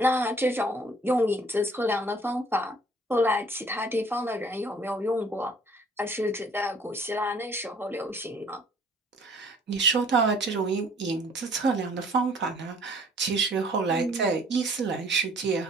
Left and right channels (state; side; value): normal; both; correlation 0.56